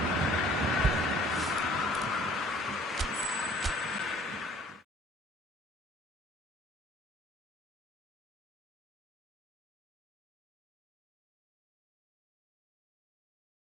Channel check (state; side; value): normal; both; correlation 0.54